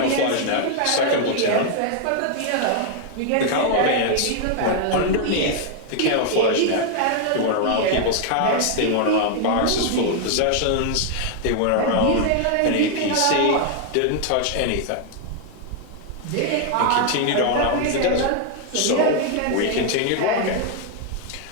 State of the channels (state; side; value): different; both; correlation 0.00